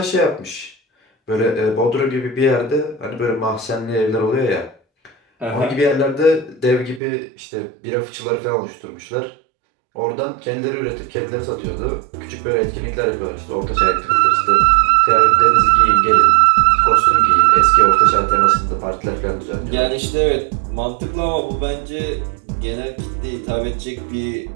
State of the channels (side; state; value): left; drops out; at 7.0 s